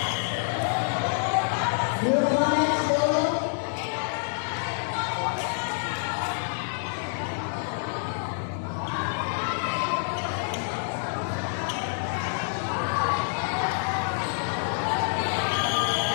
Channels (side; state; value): right; silent; digital silence